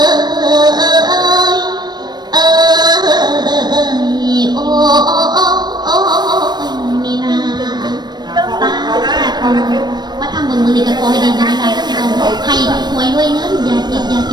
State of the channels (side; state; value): left; late; 0.21 ms